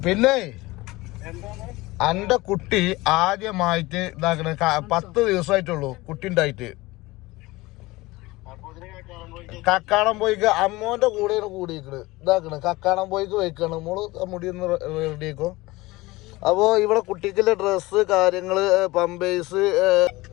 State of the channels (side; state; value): right; quieter; 20.6 dB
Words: പിന്നെ എന്റെ കുട്ടി ആദ്യമായിട്ട് ഇതാക്കണ 10 ദിവസമായിട്ടുള്ളൂ കുട്ടി ഉണ്ടായിട്ട്. കക്കാടം പോയിക്ക് അമ്മോന്റെ കൂടെയാണ് കൂടിയിരിക്കണ്. ഇതാക്കണ് കക്കാടം പോയിക്ക് വെക്കാണ്. മോള് മുടി ഒന്ന് റെഡിയാക്കോ. അപ്പോ ഇവിടെ കുട്ടിക്കുള്ള ഡ്രസ്സ് കാര്യങ്ങള് പമ്പേഴ്സ്